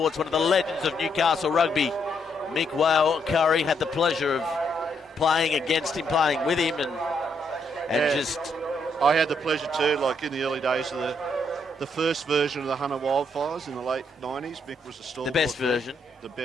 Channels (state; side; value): normal; both; correlation 0.75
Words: one of the legends of Newcastle rugby, Mick Whale Curry, had the pleasure of playing against him, playing with him, and just... I had the pleasure too, like in the early days of the first version of the Hunter Wildfires in the late 90s. Mick was the stalwart. The best version. The